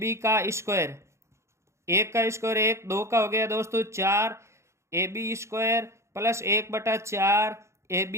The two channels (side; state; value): left; late; 0.14 ms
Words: का स्क्वायर। 1 का स्क्वायर 1, 2 का हो गया दोस्तों 4 AB square plus 1/4